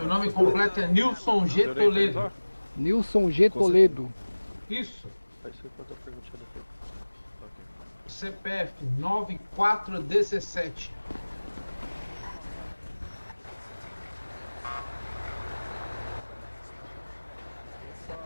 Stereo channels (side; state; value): both; inverted; correlation -1.00